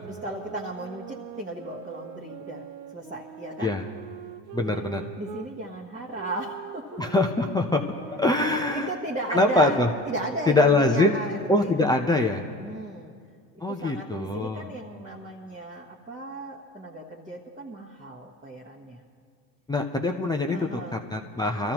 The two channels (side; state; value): both; normal; correlation 0.42